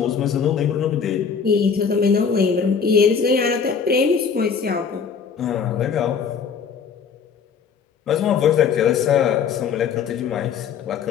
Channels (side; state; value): right; quieter; 6.4 dB